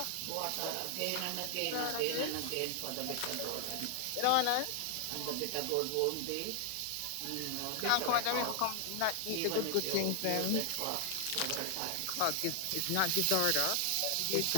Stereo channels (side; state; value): both; different; correlation 0.00